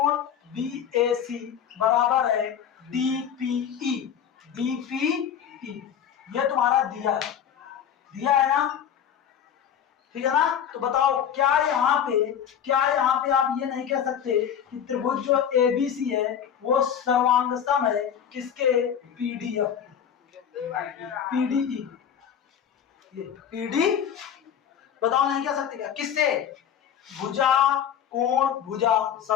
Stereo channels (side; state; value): right; quieter; 8.7 dB